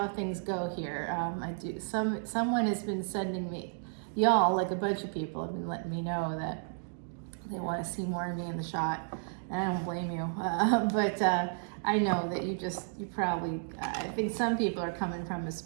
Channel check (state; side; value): silent; left; digital silence